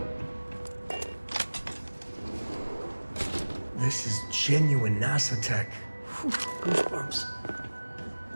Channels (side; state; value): both; inverted; correlation -1.00